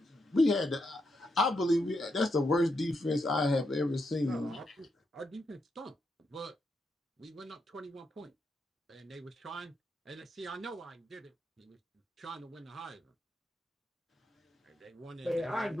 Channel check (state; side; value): normal; both; correlation 0.82